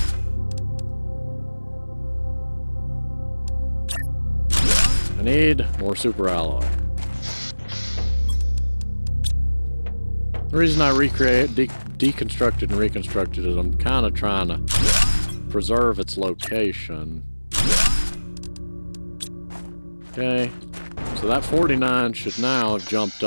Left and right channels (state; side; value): inverted; both; correlation -1.00